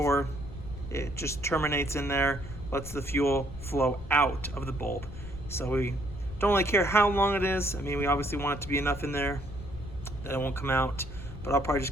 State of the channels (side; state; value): left; noise; rumble, 12 dB below the sound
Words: it just terminates in there, lets the fuel flow out of the bulb. So we don't really care how long it is. I mean, we obviously want it to be enough in there that it won't come out, but I'll probably